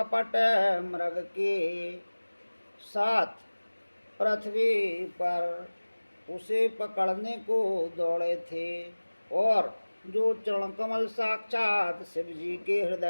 मृग के साथ पृथ्वी पर उसे पकड़ने को दौड़े थे, और जो चरण कमल साक्षात शिव जी के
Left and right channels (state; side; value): inverted; both; correlation -1.00